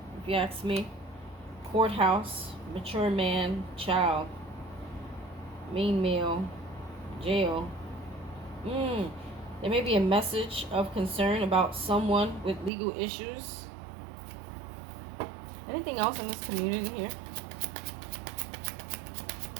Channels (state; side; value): drops out; left; at 12.7 s